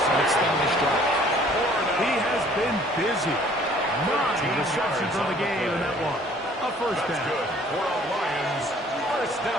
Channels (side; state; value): both; normal; correlation 0.56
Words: extend this drive. He has been busy. 9 receptions on the game in that one. A first down. Good for a Lions first